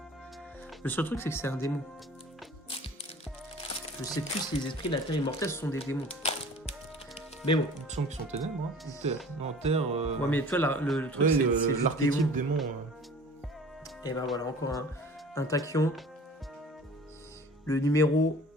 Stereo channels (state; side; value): normal; both; correlation 0.45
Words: Le seul truc, c'est que c'est un démon. Je sais plus si les esprits de la terre immortelle sont des démons. Mais bon. Il me semble qu'ils sont ténèbres. Hein. Ou terre. Non, terre. Ouais, mais tu vois, le truc, Ouais, c'est juste l'archétype démon. démon. Et ben voilà, encore un tachyon. Le numéro